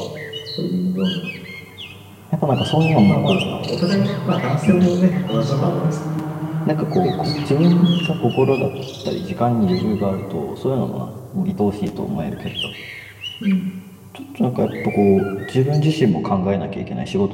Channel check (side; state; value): both; identical; correlation 1.00